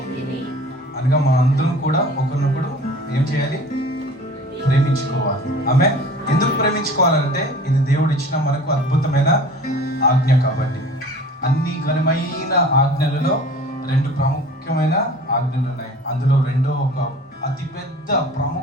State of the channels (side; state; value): both; normal; correlation 0.44